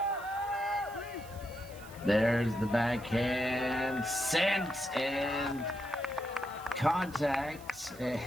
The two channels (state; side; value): noise; right; hiss, 20 dB below the sound